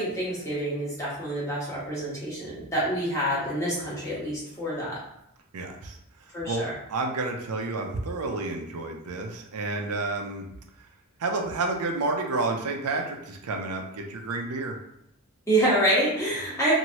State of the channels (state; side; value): normal; both; correlation 0.13